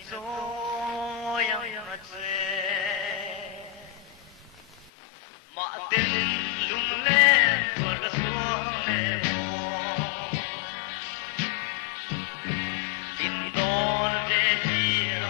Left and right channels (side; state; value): right; drops out; at 4.9 s